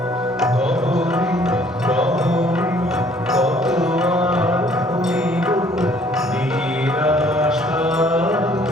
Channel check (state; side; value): normal; both; correlation 0.60